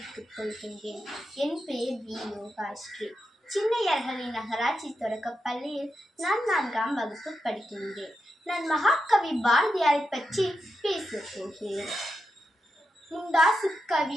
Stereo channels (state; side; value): normal; both; correlation 0.87